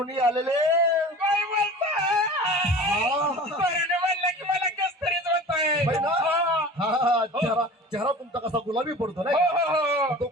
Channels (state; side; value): normal; both; correlation 0.39